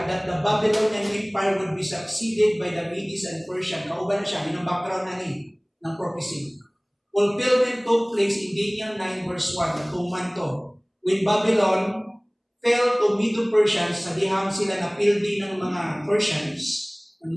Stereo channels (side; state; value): both; identical; correlation 1.00